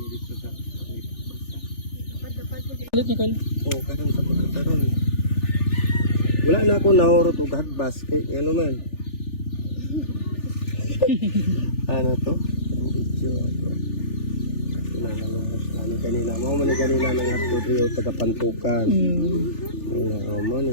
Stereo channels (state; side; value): late; right; 3.4 ms